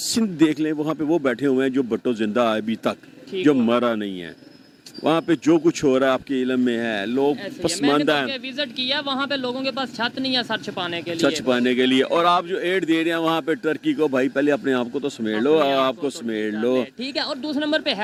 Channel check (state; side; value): identical; both; correlation 1.00